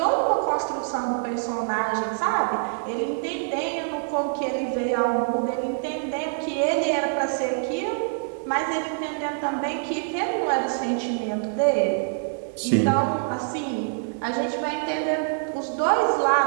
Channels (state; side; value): silent; left; digital silence